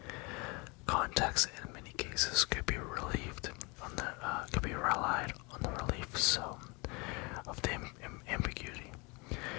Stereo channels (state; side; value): quieter; right; 28.6 dB